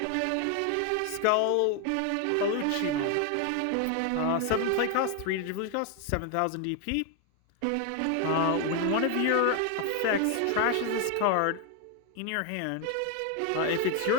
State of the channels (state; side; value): different; both; correlation 0.01